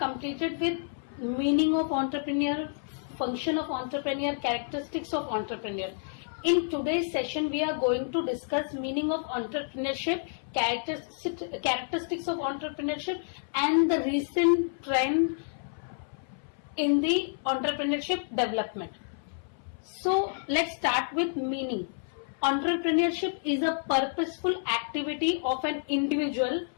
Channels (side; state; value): right; silent; 58 dB below the other